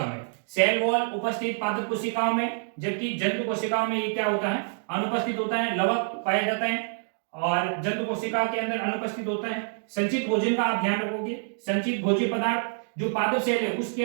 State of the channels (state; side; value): silent; left; digital silence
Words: में। सेल वॉल उपस्थित पादप कोशिकाओं में, जबकि जंतु कोशिकाओं में ये क्या होता है, अनुपस्थित होता है, लवक पाया जाता है। और जंतु कोशिका के अंदर अनुपस्थित होता है। संचित भोजन का आप ध्यान रखोगे, संचित भोज्य पदार्थ जो पादप सेल है उसके